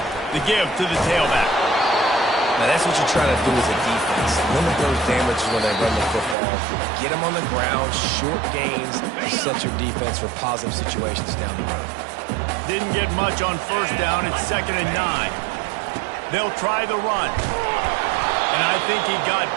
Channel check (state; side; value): drops out; left; at 6.4 s